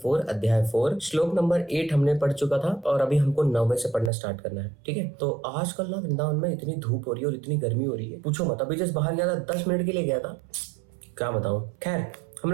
अध्याय 4 श्लोक नंबर 8 हमने पढ़ चुका था और अभी हमको 9वें से पढ़ना स्टार्ट करना है। ठीक है, तो आजकल ना वृंदावन में इतनी धूप हो रही है और इतनी गर्मी हो रही है, पूछो मत। अभी जस्ट बाहर गया था, 10 मिनट के लिए गया था, क्या बताऊं। खैर, हम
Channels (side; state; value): left; drops out; at 4.1 s